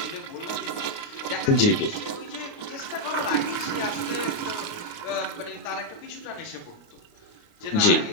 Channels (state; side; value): late; right; 29 ms